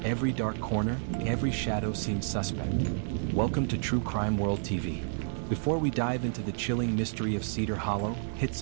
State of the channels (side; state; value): left; silent; digital silence